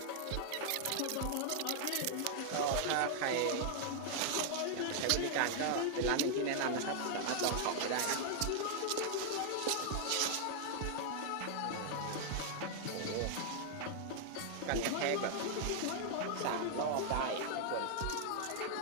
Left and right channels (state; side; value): different; both; correlation 0.00